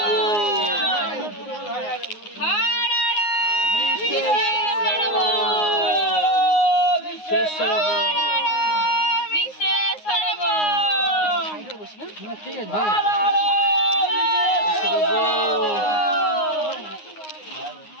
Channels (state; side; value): late; right; 9.6 ms